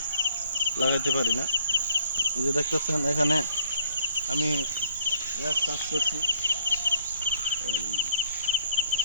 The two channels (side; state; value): both; inverted; correlation -0.62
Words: লাগাতে পারি না। এই যে দেখতেছেন, এখানে আমি গাছ চাষ করছি। এই